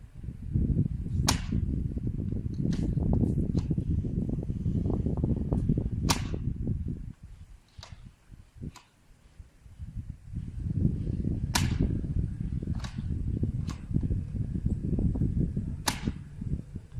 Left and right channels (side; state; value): both; identical; correlation 1.00